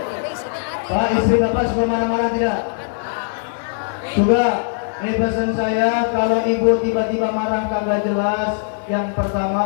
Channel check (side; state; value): right; silent; digital silence